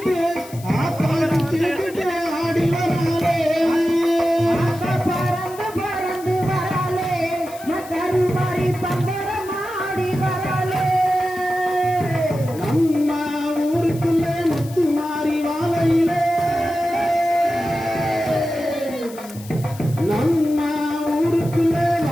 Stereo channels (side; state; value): left; noise; hiss, 19 dB below the sound